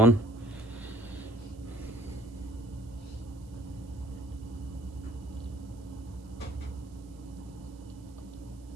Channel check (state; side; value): noise; right; hiss, 27 dB below the sound